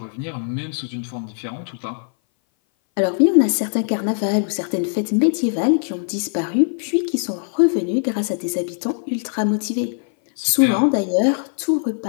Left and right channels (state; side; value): silent; right; 59 dB below the other